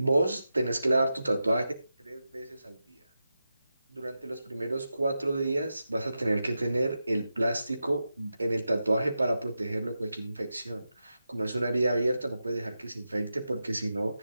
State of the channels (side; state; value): both; inverted; correlation -0.90